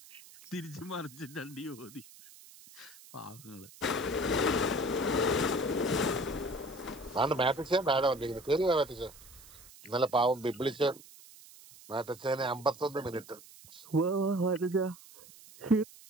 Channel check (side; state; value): right; noise; hiss, 21 dB below the sound